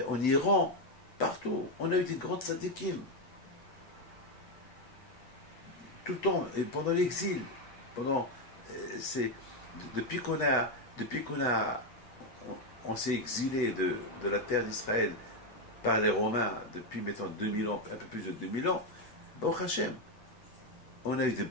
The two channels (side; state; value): right; late; 7.9 ms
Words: Iran, partout. On a eu des grands tzadikim. Tout le temps, et pendant l'exil, depuis on s'est exilé de la terre d'Israël par les Romains depuis maintenant 2000 ans, un peu plus de 2000 ans, Baruch Hashem, on a eu des